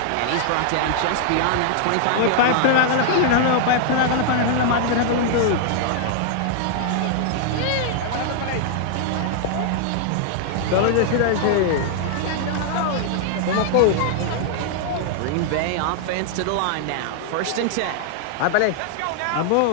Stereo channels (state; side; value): different; both; correlation -0.01